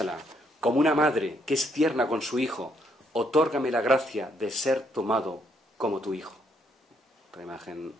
como una madre que es tierna con su hijo, otórgame la gracia de ser tomado como tu hijo. Una imagen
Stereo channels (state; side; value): normal; both; correlation 0.72